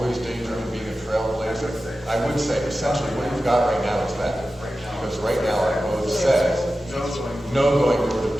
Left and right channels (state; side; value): normal; both; correlation 0.93